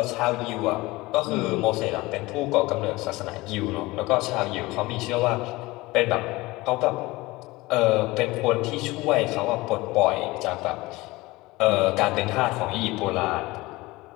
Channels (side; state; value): right; quieter; 20.8 dB